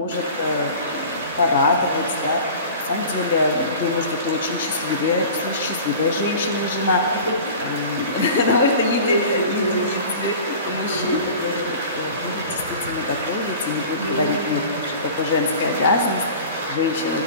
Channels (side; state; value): both; inverted; correlation -0.40